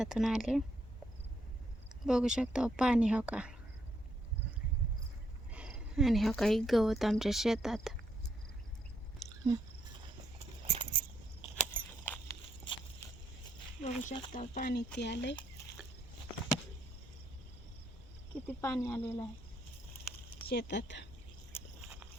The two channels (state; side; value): normal; both; correlation 0.74